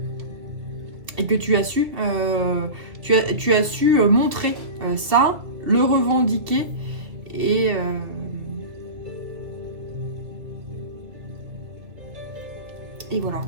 Et que tu as su, tu as su montrer ça, le revendiquer et voilà.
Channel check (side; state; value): left; late; 2.4 ms